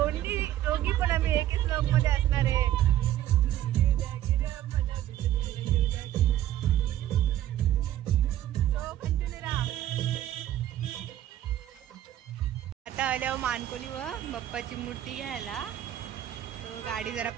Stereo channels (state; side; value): quieter; left; 12.7 dB